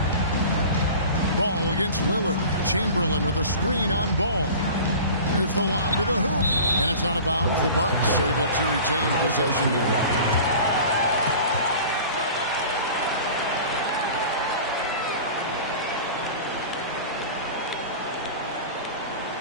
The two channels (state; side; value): inverted; both; correlation -0.39